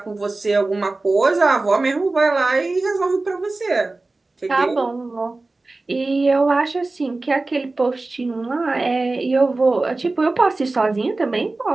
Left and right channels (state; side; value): quieter; left; 3.3 dB